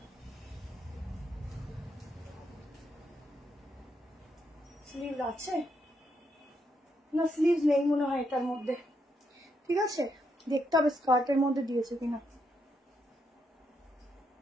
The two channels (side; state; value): both; normal; correlation 0.78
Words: স্লিভ আছে না? স্লিভ নেই মনে হয় এটার মধ্যে, ঠিক আছে? দেখতে হবে স্কার্টের মধ্যে দিয়েছে কিনা।